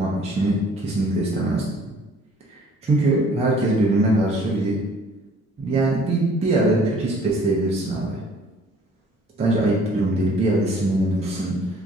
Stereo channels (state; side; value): normal; both; correlation 0.55